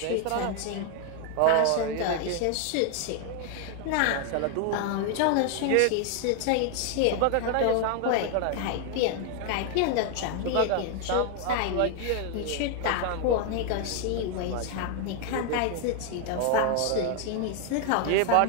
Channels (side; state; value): both; different; correlation 0.00